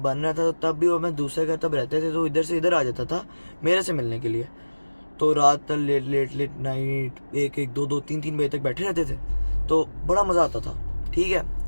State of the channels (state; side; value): inverted; both; correlation -1.00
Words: रहा था, तो तब भी वो मैं दूसरे घर तब रहते थे, तो इधर से इधर आ जाता था मेरे से मिलने के लिए। तो रात तक लेट नाइट 1-2 3 बजे तक बैठे रहते थे, तो बड़ा मज़ा आता था। ठीक है,